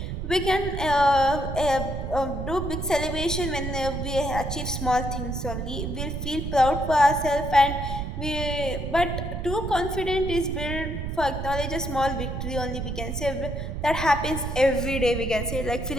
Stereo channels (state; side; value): noise; right; rumble, 4 dB below the sound